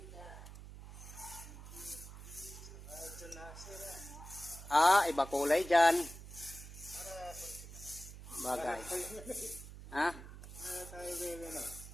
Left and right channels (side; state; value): right; noise; hum, 13 dB below the sound